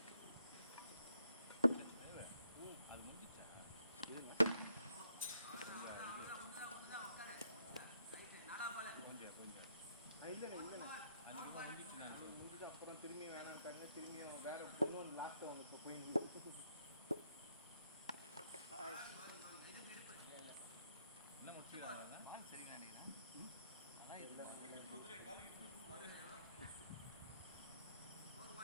அப்புறம் திரும்பி வேணான்ட்டாங்க திரும்பி வேற இன்னொன்று லாஸ்ட் அவங்க இப்போ போய் என்ன முடிச்சுக்கிறாங்க சரிங்க நினைக்கிறேன்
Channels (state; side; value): inverted; both; correlation -0.74